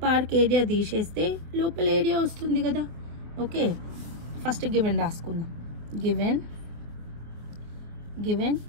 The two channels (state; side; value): late; left; 25 ms